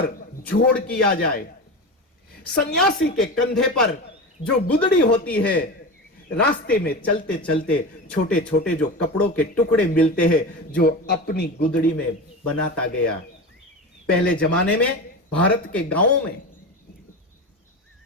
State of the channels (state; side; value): normal; both; correlation 0.25